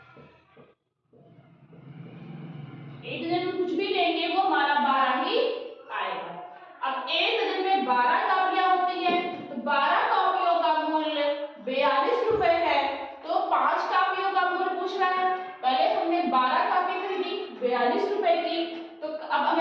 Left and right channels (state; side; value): identical; both; correlation 1.00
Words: 1 दर्जन में कुछ भी लेंगे वो हमारा 12 ही आएगा। अब 1 दर्जन में 12 कापियां होती है, तो 12 कापियों का मूल्य 42 रुपए है, तो 5 कापियों का मूल्य पूछ रहा है। पहले हमने 12 कापी खरीदी 42 रुपए की, तो अब